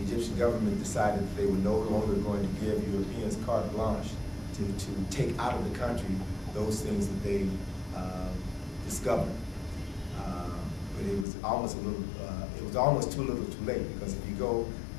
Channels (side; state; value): right; drops out; at 11.2 s